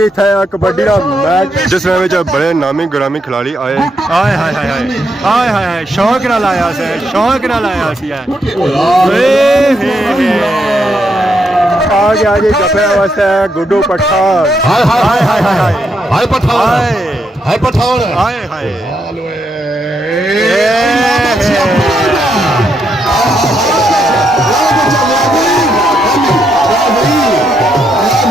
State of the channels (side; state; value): both; normal; correlation 0.79